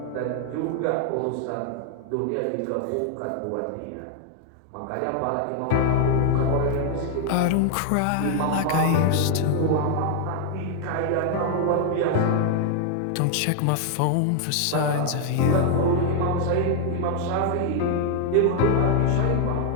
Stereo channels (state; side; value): different; both; correlation 0.00